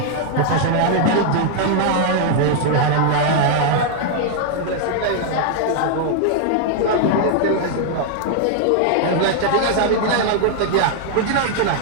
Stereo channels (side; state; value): both; different; correlation 0.00